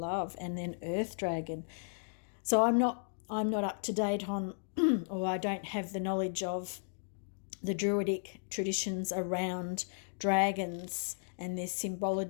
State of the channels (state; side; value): silent; right; digital silence